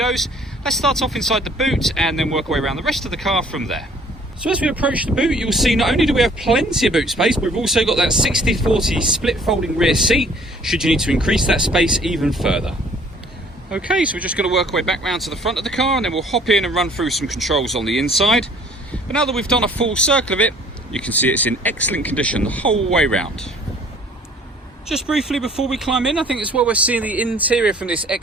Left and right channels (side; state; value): both; normal; correlation 0.56